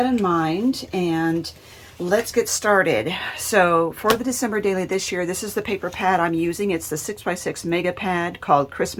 in mind and let's get started. So for the December daily this year, this is the paper pad I'm using. It's the 6x6 mega pad called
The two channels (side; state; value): both; identical; correlation 1.00